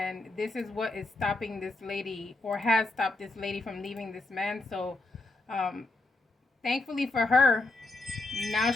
this is what is stopping this lady or has stopped this lady from leaving this man. So, um, thankfully for her, now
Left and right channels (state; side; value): quieter; right; 3.0 dB